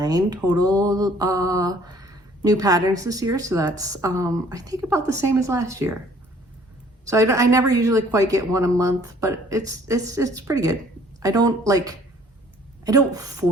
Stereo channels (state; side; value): normal; both; correlation 0.57